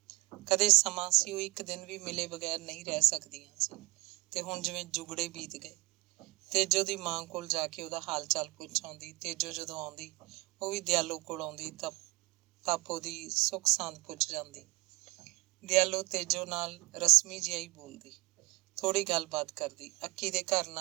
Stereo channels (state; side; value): quieter; left; 23.2 dB